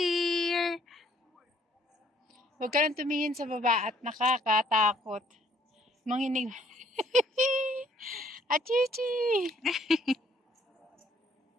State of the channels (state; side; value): normal; both; correlation 0.63